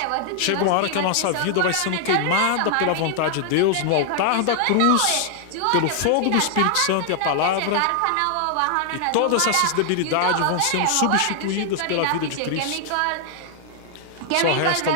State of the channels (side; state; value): both; different; correlation 0.00